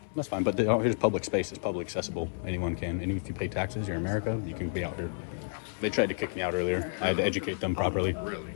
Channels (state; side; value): silent; right; 57 dB below the other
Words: that's fine. But here's public space. It's public accessible. Anyone can. And if you pay taxes, you're in America, you can be out here. They tried to kick me out earlier. I had to educate them properly. Really?